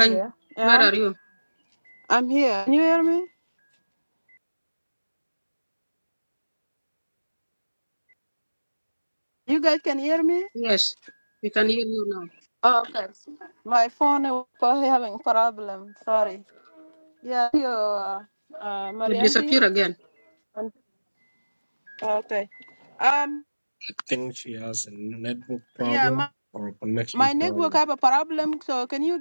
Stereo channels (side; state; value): both; inverted; correlation -1.00